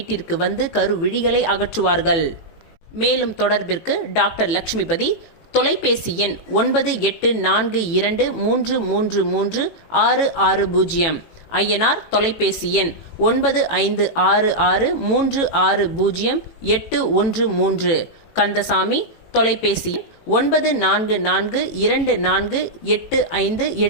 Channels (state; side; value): late; right; 18 ms